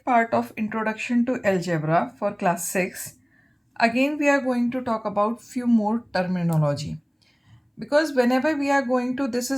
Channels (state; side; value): identical; both; correlation 1.00